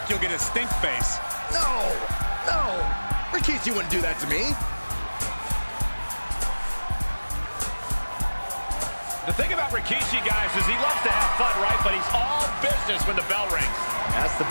you'll get a stink face. No. Rikishi wouldn't do that to me. The thing about Rikishi, guys, is he loves to have fun, right? But he's all business when the bell rings. That's the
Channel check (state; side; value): inverted; both; correlation -1.00